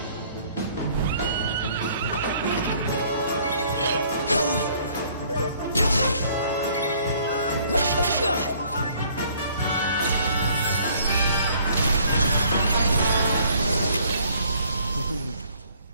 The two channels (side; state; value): both; inverted; correlation -0.60